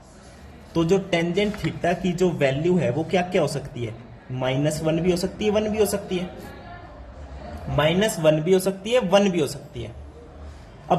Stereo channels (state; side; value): identical; both; correlation 1.00